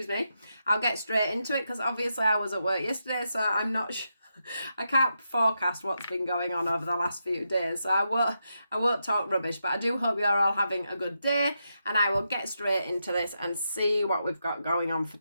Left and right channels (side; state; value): both; inverted; correlation -0.84